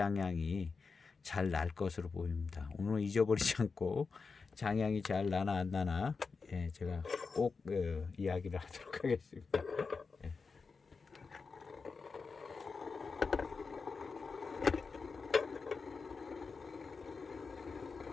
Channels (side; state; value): right; quieter; 4.8 dB